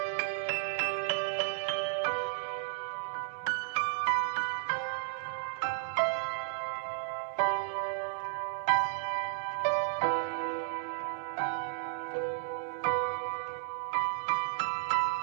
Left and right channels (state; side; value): silent; left; digital silence